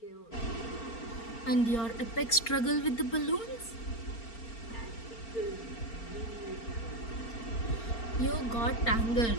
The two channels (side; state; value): right; late; 4.4 ms